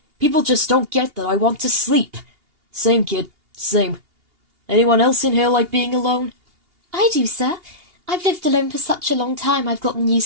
People just don't get that I want to sleep. Same, kid. Same. Anyone else in here like being alone? I do, sir. I've lived alone for such a long time I've gotten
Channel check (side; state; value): left; late; 2.8 ms